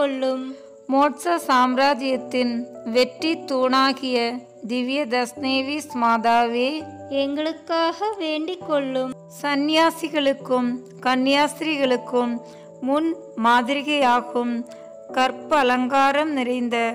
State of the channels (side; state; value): both; identical; correlation 1.00